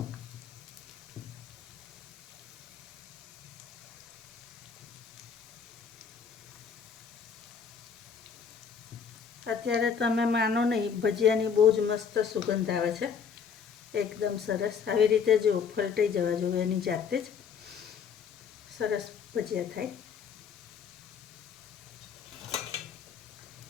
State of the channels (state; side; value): quieter; right; 6.7 dB